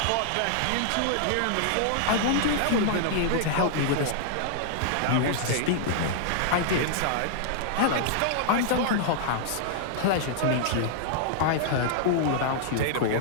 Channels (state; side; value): different; both; correlation -0.01